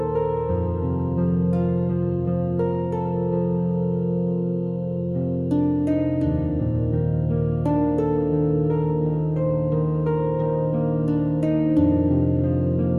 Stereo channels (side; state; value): both; identical; correlation 1.00